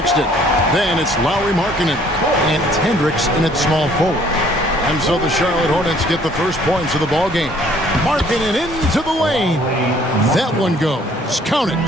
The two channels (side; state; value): both; normal; correlation 0.59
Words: Then it's Lowry Markkanen. And it's Hendricks in its small forward. And so the Charlotte Hornets get the first points of the ball game. Markkanen into the lane. That one goes. Count